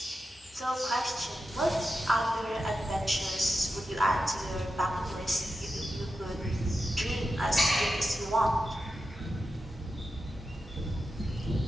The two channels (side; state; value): both; normal; correlation 0.89